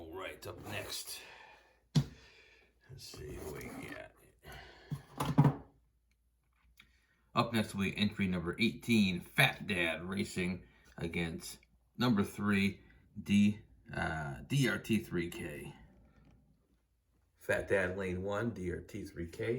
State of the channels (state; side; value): identical; both; correlation 1.00